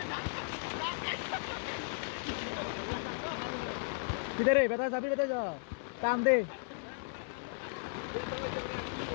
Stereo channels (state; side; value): silent; right; 54 dB below the other